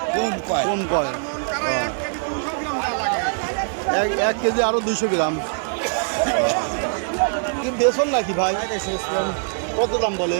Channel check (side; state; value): left; silent; 64 dB below the other